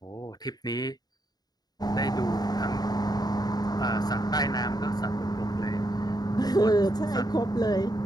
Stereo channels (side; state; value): right; late; 0.19 ms